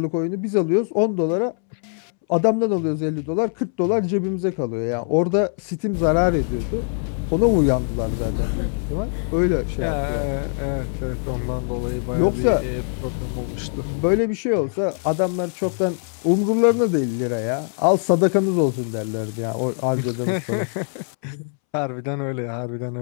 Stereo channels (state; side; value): silent; right; 64 dB below the other